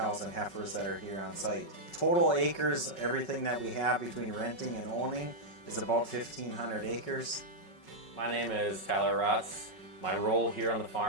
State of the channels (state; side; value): late; right; 5.4 ms